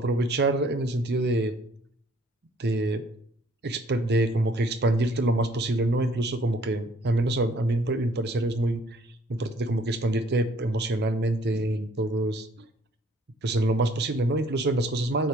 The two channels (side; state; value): both; normal; correlation 0.60